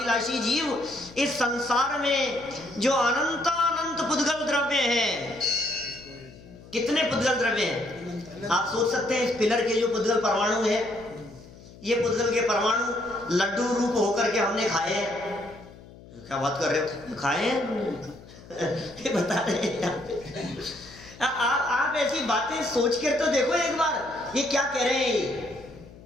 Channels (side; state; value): left; noise; hum, 20 dB below the sound